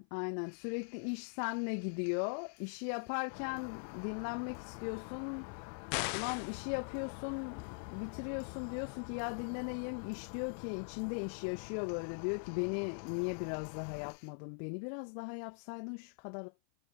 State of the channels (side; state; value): right; silent; 50 dB below the other